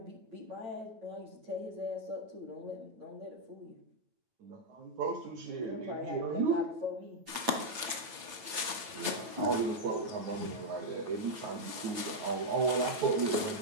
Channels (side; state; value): left; late; 8.8 ms